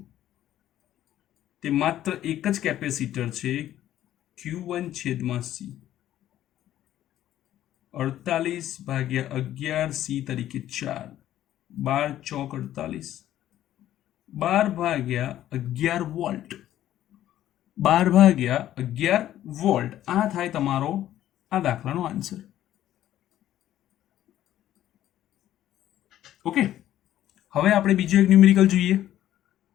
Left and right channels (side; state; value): right; quieter; 12.6 dB